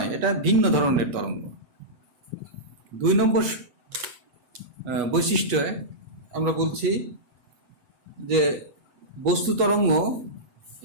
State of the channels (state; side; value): late; left; 8.3 ms